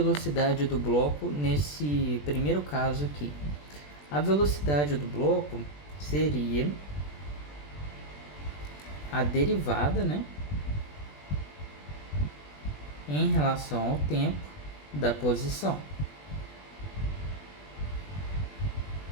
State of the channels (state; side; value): late; right; 20 ms